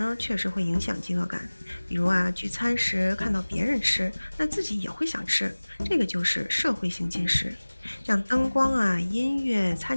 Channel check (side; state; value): both; inverted; correlation -1.00